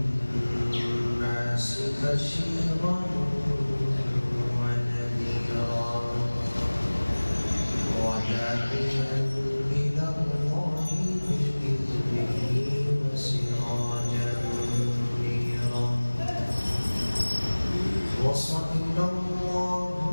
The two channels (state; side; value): inverted; both; correlation -1.00